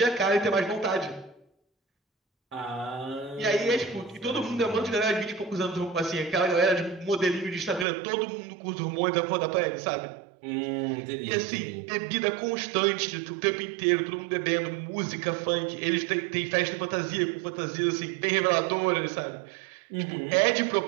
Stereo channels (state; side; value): drops out; left; at 7.9 s